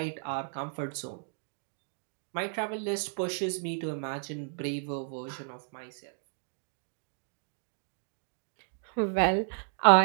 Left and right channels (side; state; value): left; silent; digital silence